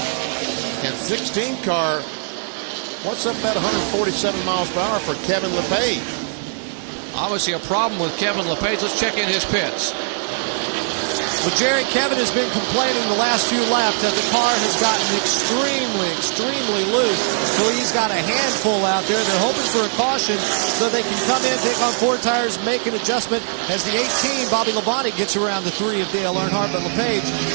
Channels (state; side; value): silent; left; digital silence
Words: And 16 car, what's up at 147 miles per hour for Kevin LePage? Obviously a problem with Kevin LePage. Let's check in his pits. Well, Jerry, Kevin has been complaining the last few laps that the car has gotten extremely loose. So he's got a handful out there. They're hoping for a caution so they can come in, take on 4 tires, make an adjustment as the 18, Bobby Labonte, gets around the 3 of Dale Earnhardt. But LePage